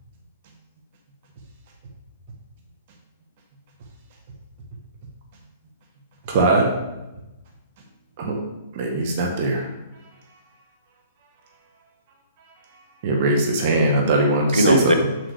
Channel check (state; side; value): inverted; both; correlation -0.53